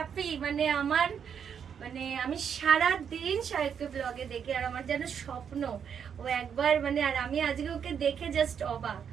মানে আমার মানে আমি সারা দিন সাহিত্য ব্লগে দেখি, আর আমার যেন স্বপ্ন ও একবার মানে, আর আমি আজকে ওকে দেখে জাস্ট অবাক।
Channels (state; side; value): quieter; left; 7.6 dB